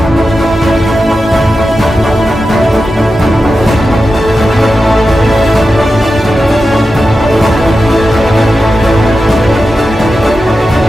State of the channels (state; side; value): normal; both; correlation 0.91